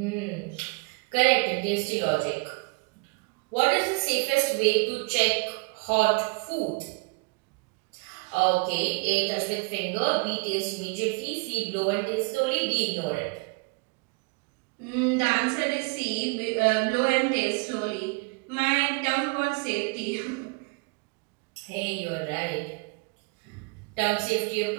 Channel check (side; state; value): left; quieter; 29.8 dB